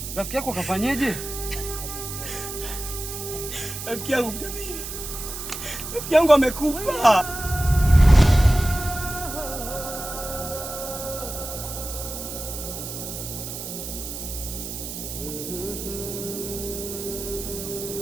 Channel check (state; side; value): noise; right; hiss, 8 dB below the sound